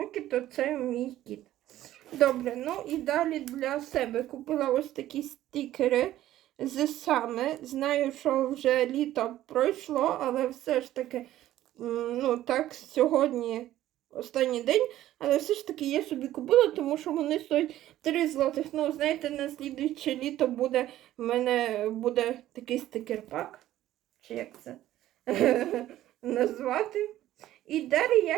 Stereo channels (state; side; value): quieter; left; 13.7 dB